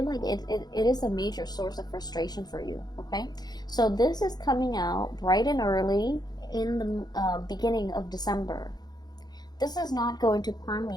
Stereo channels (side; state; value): right; late; 0.20 ms